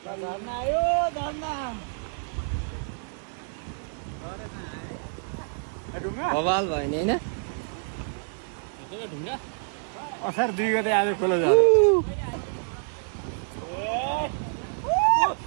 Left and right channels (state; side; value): silent; left; 60 dB below the other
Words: बवाल भयो नि होइन असार 2 गते आज खोला झऱ्यो